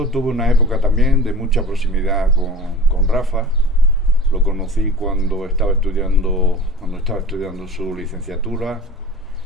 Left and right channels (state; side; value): normal; both; correlation 0.39